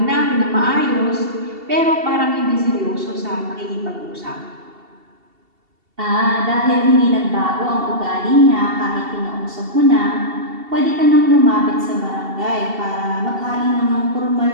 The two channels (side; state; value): left; late; 2.7 ms